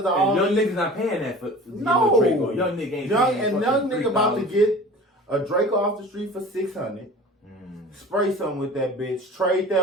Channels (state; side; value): normal; both; correlation 0.40